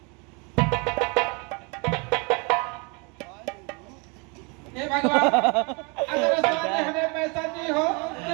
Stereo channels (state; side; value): quieter; left; 31.5 dB